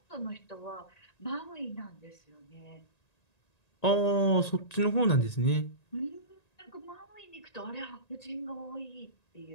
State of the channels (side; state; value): right; late; 1.9 ms